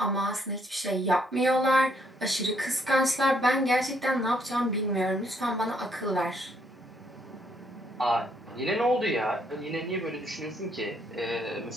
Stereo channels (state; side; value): normal; both; correlation 0.71